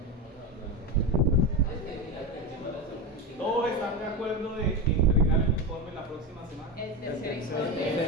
¿Todos están de acuerdo de entregar el informe la próxima semana? El tercer El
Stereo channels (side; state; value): both; normal; correlation 0.18